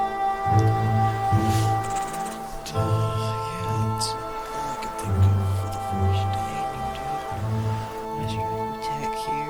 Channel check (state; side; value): identical; both; correlation 1.00